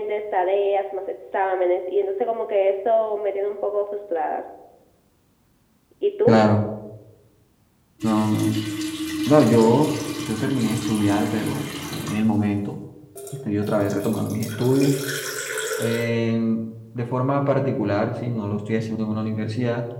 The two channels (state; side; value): identical; both; correlation 1.00